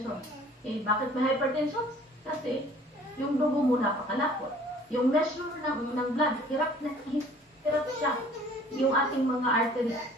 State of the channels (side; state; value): both; normal; correlation 0.52